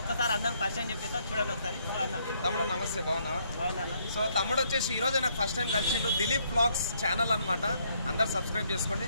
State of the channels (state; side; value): inverted; both; correlation -0.70